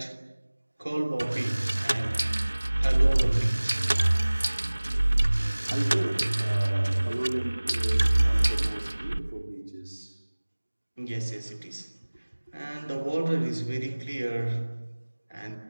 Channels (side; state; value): both; inverted; correlation -1.00